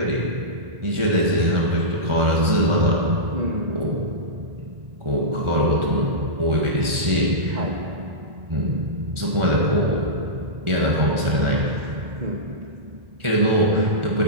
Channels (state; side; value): late; left; 1.4 ms